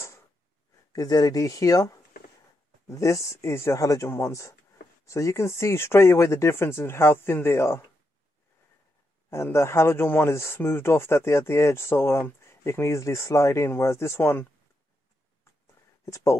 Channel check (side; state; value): both; normal; correlation 0.83